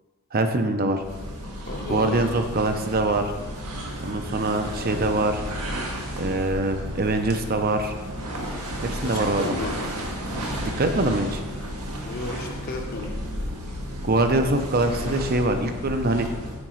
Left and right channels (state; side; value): normal; both; correlation 0.30